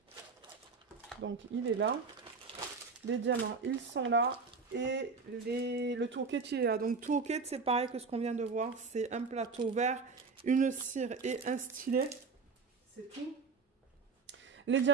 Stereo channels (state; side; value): quieter; left; 4.8 dB